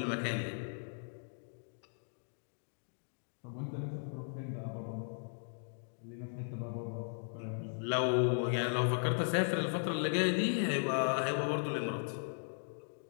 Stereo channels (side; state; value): right; silent; digital silence